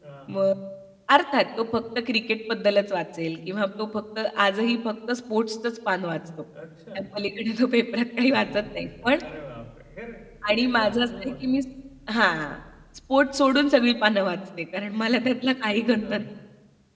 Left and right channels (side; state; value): both; identical; correlation 1.00